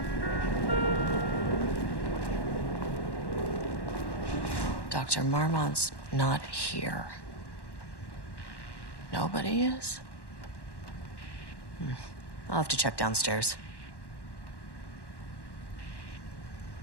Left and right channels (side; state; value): right; late; 1.1 ms